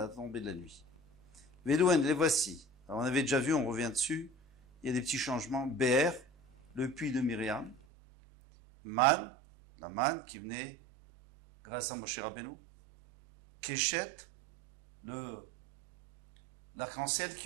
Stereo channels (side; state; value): left; drops out; at 7.8 s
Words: tombée de la nuit. Velouen, les voici. Alors, on avait déjà vu, on revient dessus. Il y a des petits changements. Be'er, le puits de Myriam. Man, la manne qui venait grâce à Moshe Rabbeinu. Keshet, l'arc-en-ciel